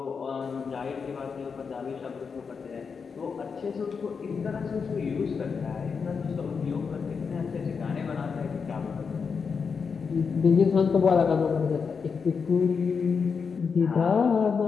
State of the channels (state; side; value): quieter; right; 5.7 dB